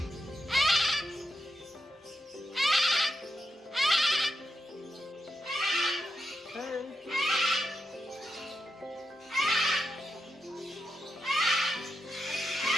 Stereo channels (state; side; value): normal; both; correlation 0.86